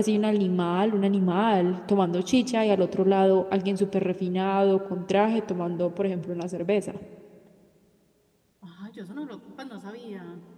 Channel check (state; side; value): identical; both; correlation 1.00